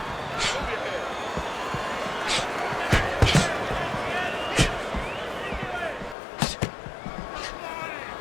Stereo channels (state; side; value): drops out; right; at 6.2 s